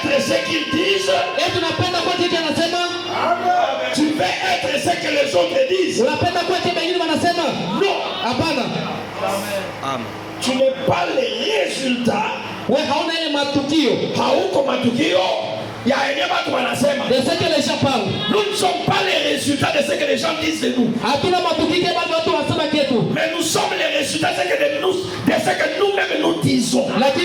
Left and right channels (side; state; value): both; identical; correlation 1.00